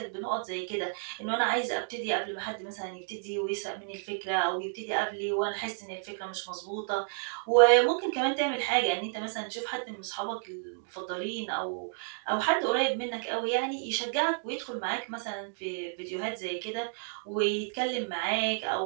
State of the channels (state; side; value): silent; left; digital silence